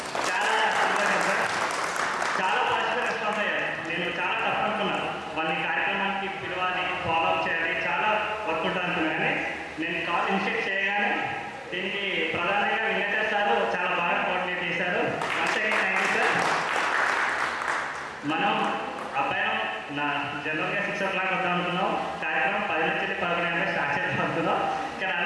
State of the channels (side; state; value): both; identical; correlation 1.00